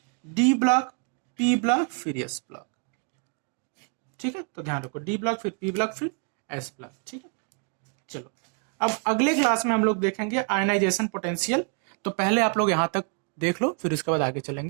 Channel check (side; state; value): left; quieter; 37.8 dB